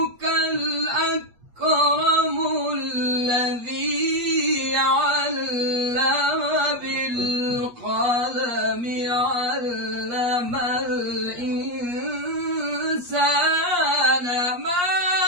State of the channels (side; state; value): left; late; 8.4 ms